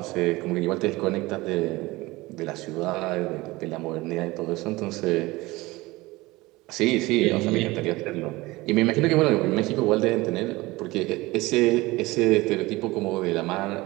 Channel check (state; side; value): quieter; left; 20.8 dB